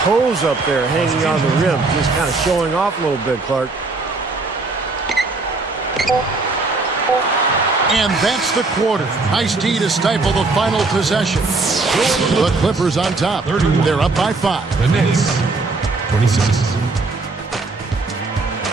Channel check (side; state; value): left; quieter; 3.6 dB